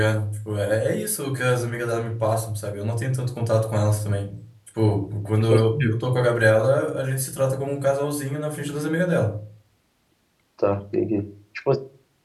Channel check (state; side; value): identical; both; correlation 1.00